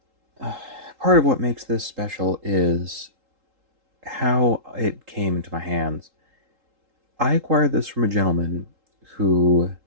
part of what makes this special is how it came into my hands. I acquired this from a gentleman who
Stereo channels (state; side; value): late; left; 3.8 ms